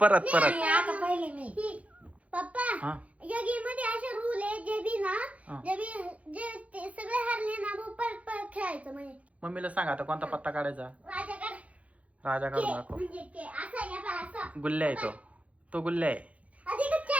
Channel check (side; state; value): left; late; 0.066 ms